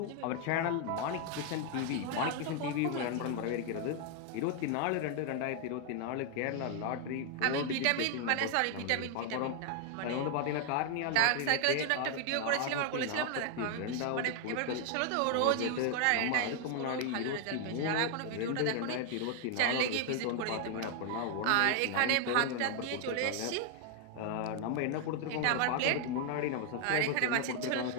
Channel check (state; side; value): different; both; correlation 0.00